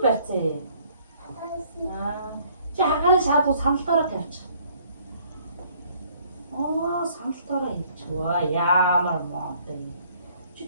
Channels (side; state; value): both; inverted; correlation -0.61